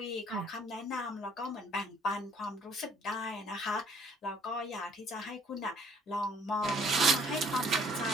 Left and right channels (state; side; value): normal; both; correlation 0.61